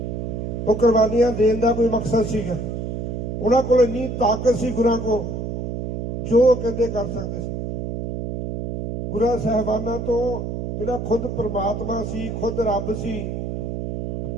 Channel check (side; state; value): right; noise; hum, 5 dB below the sound